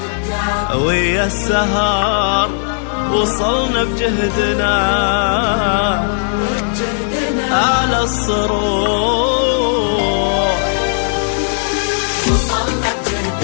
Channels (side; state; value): right; silent; digital silence